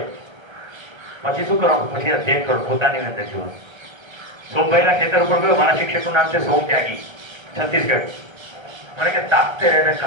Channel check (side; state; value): left; late; 1.3 ms